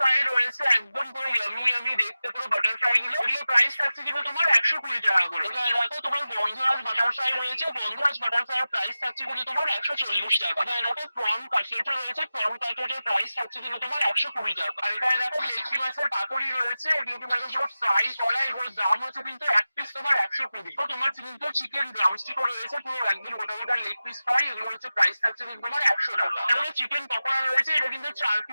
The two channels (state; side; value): inverted; both; correlation -0.94